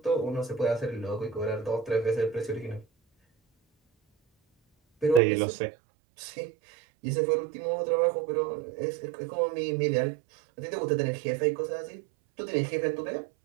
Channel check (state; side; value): drops out; left; at 5.2 s